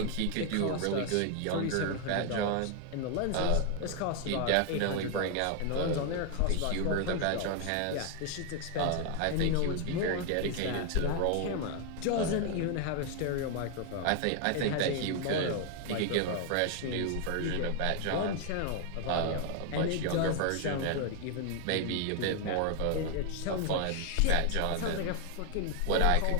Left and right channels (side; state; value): both; different; correlation 0.00